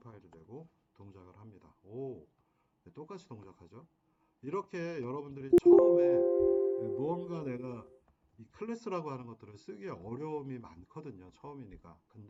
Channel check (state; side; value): identical; both; correlation 1.00